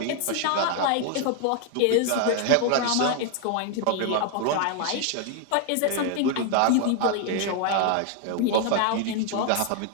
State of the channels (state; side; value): different; both; correlation 0.01